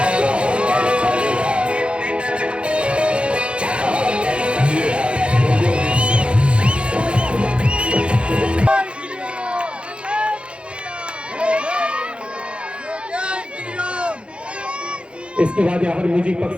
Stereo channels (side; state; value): left; late; 0.058 ms